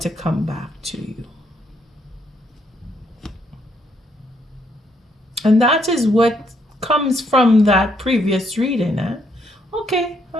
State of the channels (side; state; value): both; normal; correlation 0.73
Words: come back to you. And that is what comes from that previous reading. Okay,